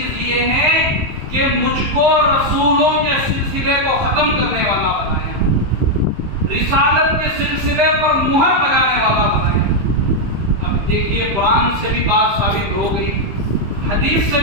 یہ ہے کہ مجھ کو رسولوں کے سلسلے کو ختم کرنے والا بنایا, رسالت کے سلسلے پر مہر لگانے والا بنایا. اب دیکھیے, قرآن سے بھی بات ثابت ہو گئی, حدیث سے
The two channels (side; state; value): left; late; 15 ms